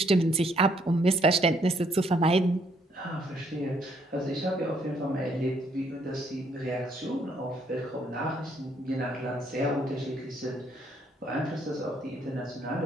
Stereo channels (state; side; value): normal; both; correlation 0.69